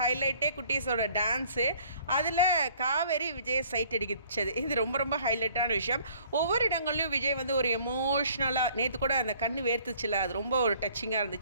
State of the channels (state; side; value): inverted; both; correlation -0.57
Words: குட்டீஸோட டான்ஸு. அதில் காவேரி விஜய் சைட் அடிச்சது இது ரொம்ப ரொம்ப ஹைலைட்டான விஷயம். ஒவ்வொரு இடங்கள்லையும் விஜய் வந்து ஒரு எமோஷ்னலாக, நேற்று கூட அந்த கண்ணு வேர்த்துச்சுல, அது ரொம்ப ஒரு டச்சிங்காக